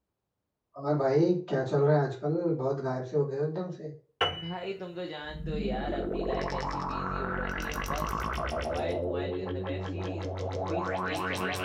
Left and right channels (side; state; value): both; identical; correlation 1.00